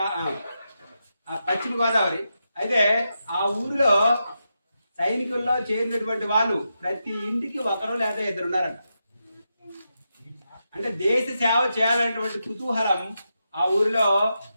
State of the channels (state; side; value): inverted; both; correlation -0.87